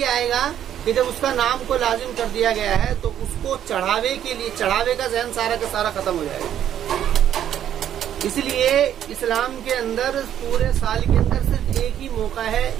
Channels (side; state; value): left; quieter; 10.5 dB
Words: آئے گا کہ جب اس کا نام کو لازم کر دیا گیا ہے تو اس کو چڑھاوے کے لیے، چڑھاوے کا ذہن سارا کا سارا ختم ہو جائے گا. اس لیے اسلام کے اندر پورے سال کے اندر صرف ایک ہی موقع ہے،